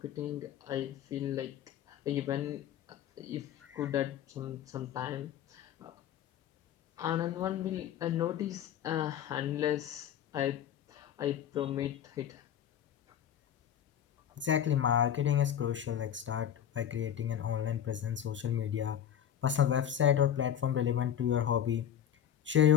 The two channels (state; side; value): quieter; right; 9.9 dB